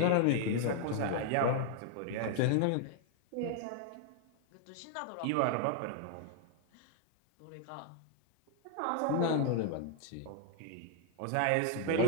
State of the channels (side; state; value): both; different; correlation 0.00